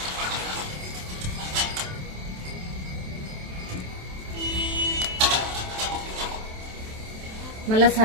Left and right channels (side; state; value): left; late; 27 ms